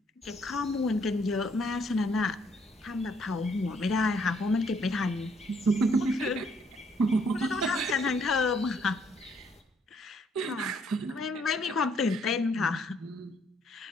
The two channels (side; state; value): both; normal; correlation 0.68